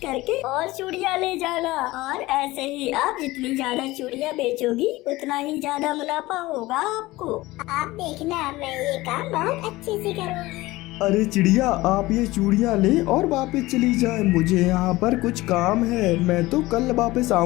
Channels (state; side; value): quieter; right; 19.2 dB